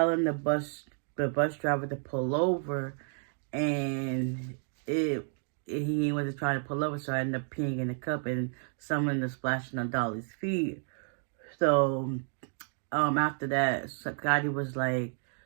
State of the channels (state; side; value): silent; left; 57 dB below the other